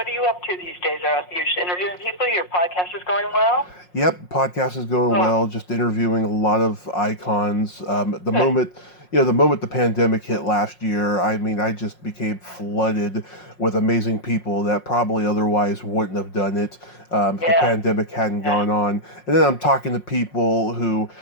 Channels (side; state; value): right; late; 5.5 ms